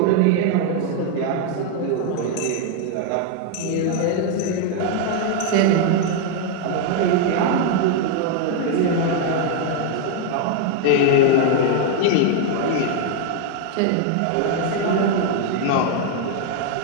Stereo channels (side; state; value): both; different; correlation 0.00